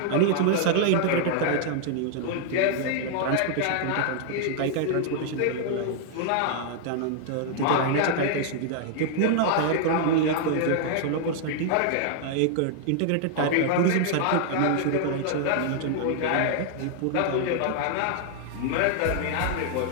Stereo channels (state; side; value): different; both; correlation -0.01